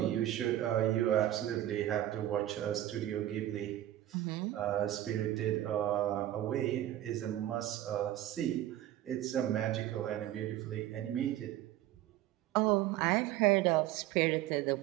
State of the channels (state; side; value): quieter; left; 13.4 dB